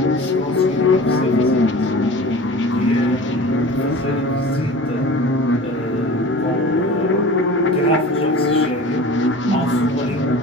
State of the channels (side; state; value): both; normal; correlation 0.38